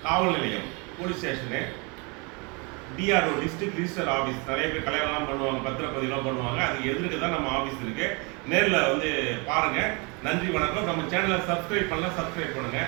காவல் நிலையம் police station, DRO district register office. நிறைய பேர் கல்யாணம்லாம் பண்ணுவாங்க, பத்திரப்பதிலாம் பண்ணுவாங்க. அதுக்கு எதிர்க்கு தான் நம்ம ஆஃபீஸ் இருக்கு. நேரில் வந்து பாருங்க. நன்றி, வணக்கம். நம்ம சேனலை சப்ஸ்கிரைப் பண்ணலாம், சப்ஸ்கிரைப் பண்ணுங்க.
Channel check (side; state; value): left; quieter; 30.6 dB